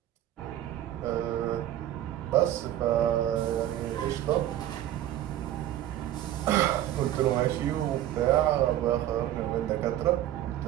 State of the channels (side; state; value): left; quieter; 12.9 dB